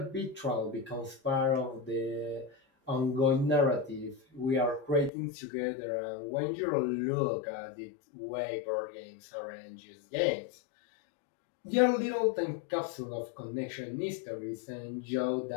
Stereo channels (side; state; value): right; drops out; at 5.1 s